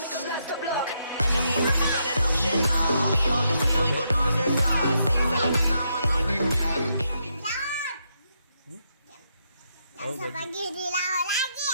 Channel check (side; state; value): both; inverted; correlation -0.79